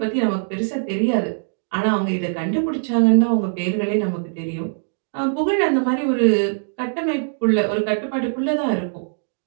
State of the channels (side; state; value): left; silent; digital silence